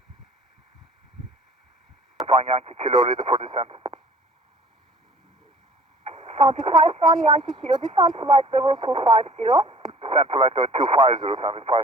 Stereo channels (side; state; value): both; normal; correlation 0.50